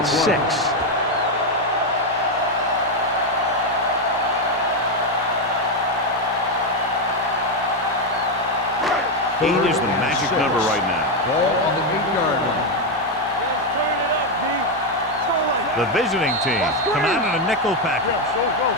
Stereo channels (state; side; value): normal; both; correlation 0.05